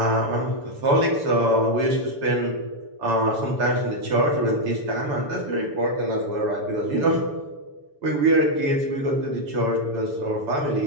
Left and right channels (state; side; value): late; left; 6.9 ms